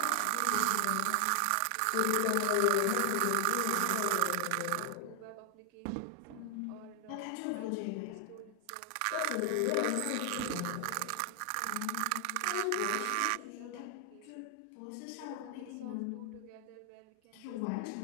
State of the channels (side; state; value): both; different; correlation 0.00